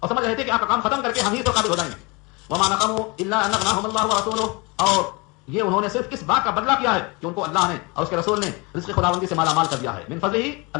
سمجھ رہے تھے کہ آپ کا کام ختم کر کے ہم ہی تو قابل ہو جائیں گے. وما نقموا الا ان اغناهم الله ورسوله, اور یہ انہوں نے صرف کس بات کا بدلہ کیا ہے کہ ان کو اللہ نے اور اس کے رسول نے رزق خداوندی سے مالا مال کر دیا ہے. من فضل ہی,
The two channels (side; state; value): right; quieter; 27.5 dB